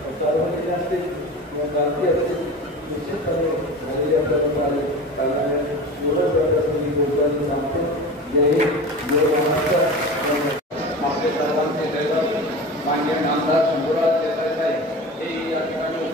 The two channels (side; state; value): both; normal; correlation 0.32